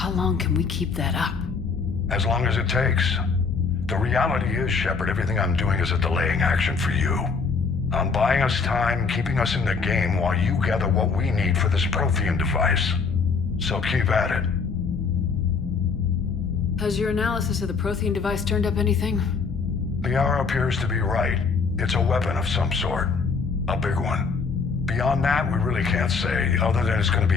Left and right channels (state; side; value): quieter; right; 5.0 dB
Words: long can we keep that up? As long as it takes. The reality is, Shepard, everything I'm doing is a delaying action for you. I'm buying us time, keeping us in the game while you gather what we need for this Prothean device. So keep at it. Has your analysis of the Prothean device turned up anything? The hour appears to be right. It's a weapon of some sort. A big one. Beyond that, we really can't say, other than it's going to